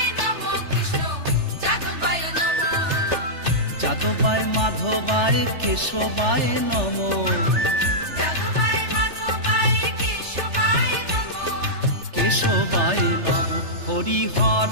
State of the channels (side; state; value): left; late; 3.3 ms